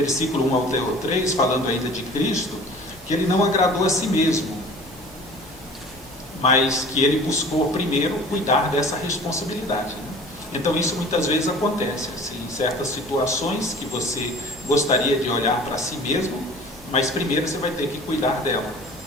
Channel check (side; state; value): left; noise; hum, 25 dB below the sound